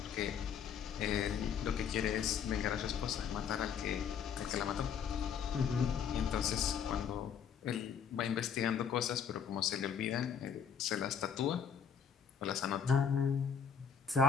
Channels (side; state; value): right; quieter; 7.5 dB